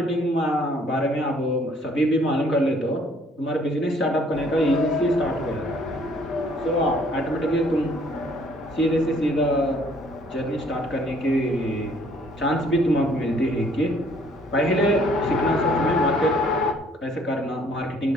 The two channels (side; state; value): both; normal; correlation 0.61